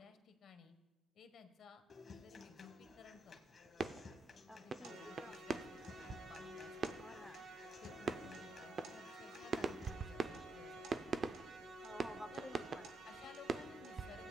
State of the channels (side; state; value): left; quieter; 3.2 dB